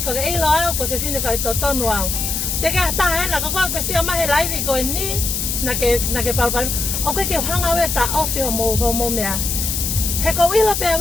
Koke ilo au ko whiwhine whai tō tonu au. Te ke hata hena, ko kua sia mahe laivi koe ni. Na ke palpari. O koe ke hanga ue ta ofi homo mea. He ko wila pia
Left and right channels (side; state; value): left; noise; hiss, 1 dB below the sound